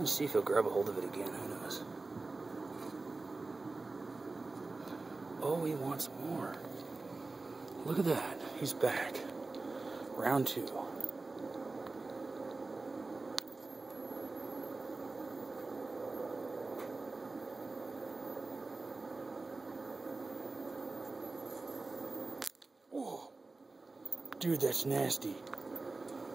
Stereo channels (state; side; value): quieter; left; 3.5 dB